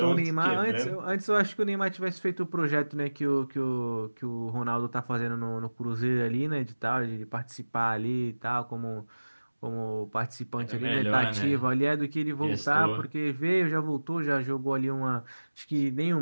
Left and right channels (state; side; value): inverted; both; correlation -1.00